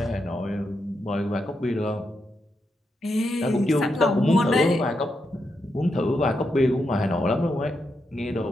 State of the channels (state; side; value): normal; both; correlation 0.84